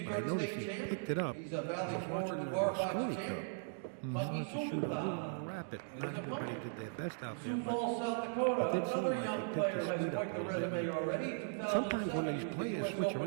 I noticed he picked it up. I was watching the Mosconi Cup. He started to shoot a little more rapid. Not everybody did their best out there, but it did seem like he picked his speed up a little bit. Sometimes when these players switch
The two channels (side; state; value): left; silent; digital silence